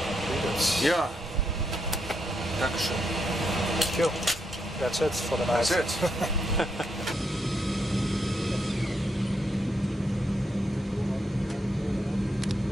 Yeah. Dankeschön. Thank you. That's it for the night. That's it.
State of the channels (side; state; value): both; normal; correlation 0.80